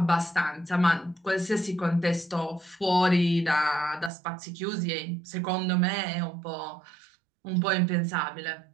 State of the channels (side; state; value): left; drops out; at 4.1 s